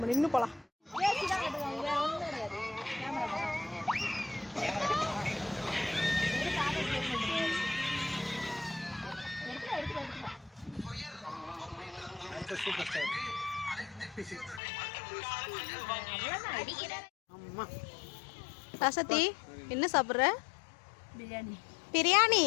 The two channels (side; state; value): right; drops out; at 14.6 s